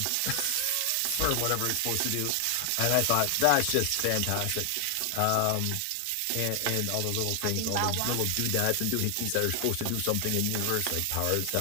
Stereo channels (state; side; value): different; both; correlation 0.00